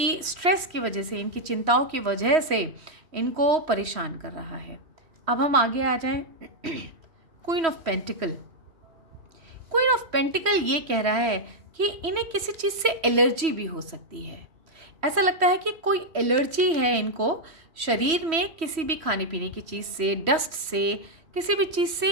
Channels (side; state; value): left; late; 3.1 ms